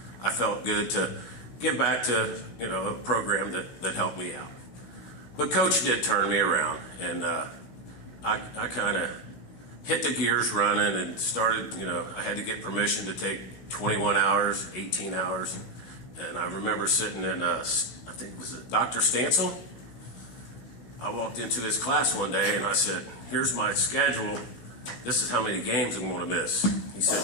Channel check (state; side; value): late; right; 16 ms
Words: I felt good to give back to a program that helped me out. But Coach did turn me around, and I kind of hit the gears running and started. I had to get permission to take 21 hours, 18 hours, and I remember sitting in I think was it Dr. Stansel. I walked into his class one day and I said, "Here's my schedule. This is how many games I'm going to miss." He